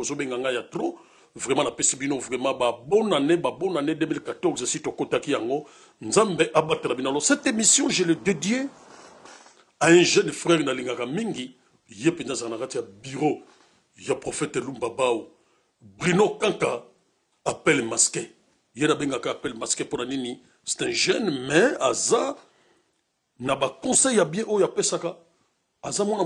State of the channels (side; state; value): both; identical; correlation 1.00